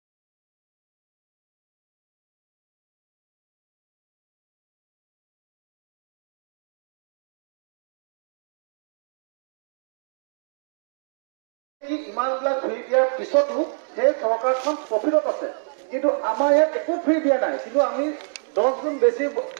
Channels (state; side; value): silent; left; digital silence